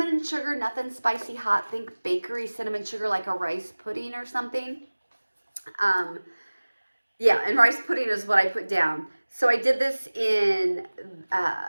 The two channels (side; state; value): both; inverted; correlation -1.00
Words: and sugar, nothing spicy hot. Think bakery cinnamon sugar, like a rice pudding or something. Yeah, and rice pudding is what I put down. So I did this in